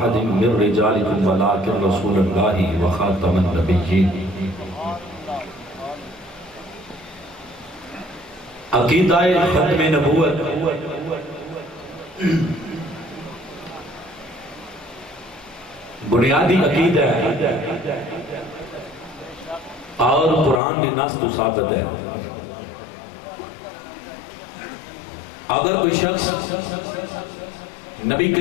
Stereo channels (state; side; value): drops out; right; at 20.6 s